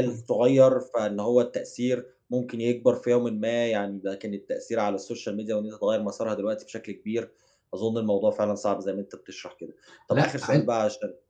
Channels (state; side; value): identical; both; correlation 1.00